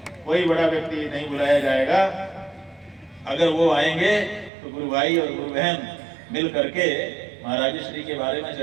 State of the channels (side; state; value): left; drops out; at 4.5 s